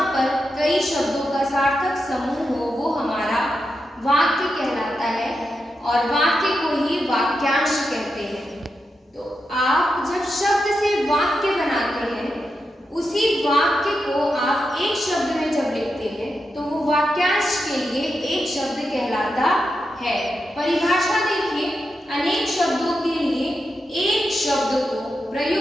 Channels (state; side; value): normal; both; correlation 0.87